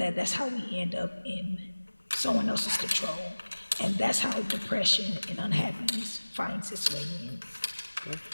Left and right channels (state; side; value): inverted; both; correlation -1.00